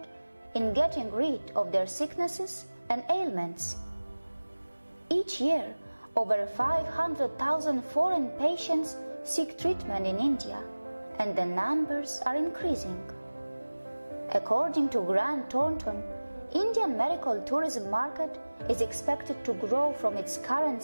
in getting rid of their sicknesses and ailments. Each year, over 500,000 foreign patients seek treatment in India, and the numbers are increasing. According to Grant Thornton, Indian medical tourism market is expected to grow from its current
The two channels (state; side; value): inverted; both; correlation -1.00